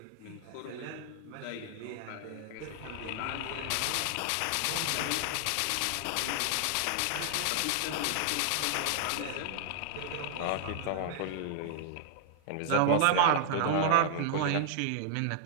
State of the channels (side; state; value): both; different; correlation -0.01